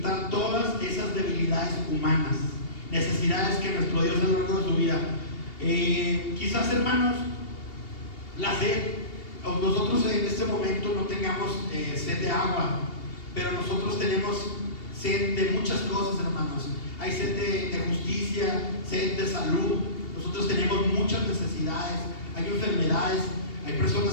todas esas debilidades humanas, necesidades que nuestro Dios a lo largo de su vida. Quizás, hermanos, la sed, nosotros en este momento no tengamos sed de agua, pero nosotros tenemos sed de muchas cosas, hermanos. Hay sed de justicia, sed de salud. Nosotros tenemos muchas necesidades, hay enfermedades, hay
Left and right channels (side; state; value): right; late; 2.8 ms